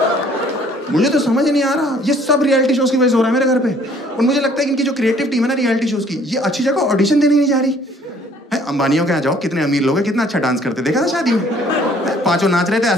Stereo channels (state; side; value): normal; both; correlation 0.58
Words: मुझे तो समझ नहीं आ रहा, ये सब रियलिटी शोज की वजह से हो रहा है मेरे घर पे। और मुझे लगता है कि इनकी जो क्रिएटिव टीम है ना रियलिटी शोज की, ये अच्छी जगह ऑडिशन देने नहीं जा रही है। अंबानियों के यहाँ जाओ, कितने अमीर लोग हैं, कितना अच्छा डांस करते, देखा था शादी में 5 नाच रहे थे,